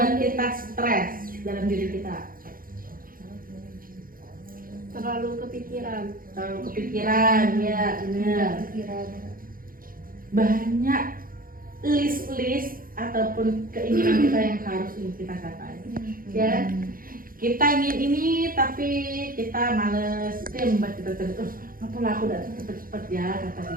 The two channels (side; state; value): left; late; 0.41 ms